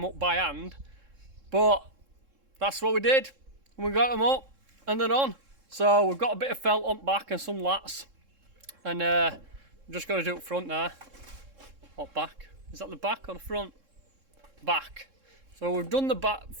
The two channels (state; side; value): late; left; 3.7 ms